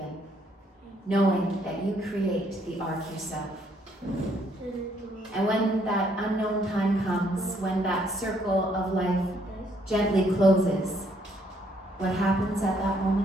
knowing that you create the arc yourself. And when that unknown time comes, when that circle of life gently closes, what happens at that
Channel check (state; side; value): normal; both; correlation 0.68